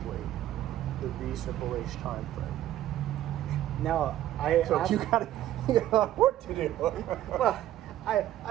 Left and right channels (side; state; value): left; quieter; 13.2 dB